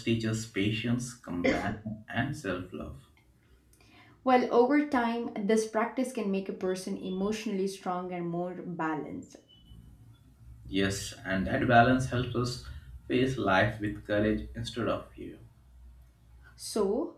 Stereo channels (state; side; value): identical; both; correlation 1.00